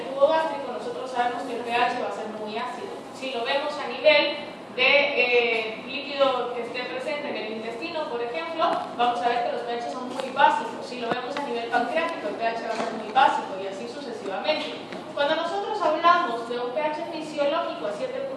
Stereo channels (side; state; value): both; identical; correlation 1.00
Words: jugo gástrico, nosotros sabemos que el pH va a ser muy ácido. Si lo vemos a nivel de líquido que esté presente en el intestino, por ejemplo, vamos a ver que los pH son muy básicos. Si lo vemos a nivel pancreático, el pH va a ser muy básico y así sucesivamente. Cuando nosotros hablamos de un pH fisiológico a